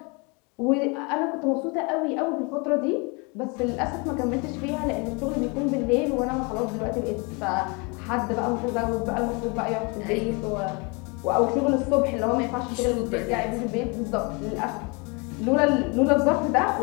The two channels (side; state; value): right; quieter; 30.6 dB